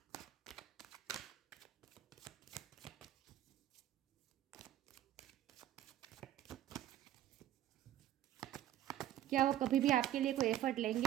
क्या वो कभी भी आपके लिए कोई एफर्ट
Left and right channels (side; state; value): left; quieter; 12.5 dB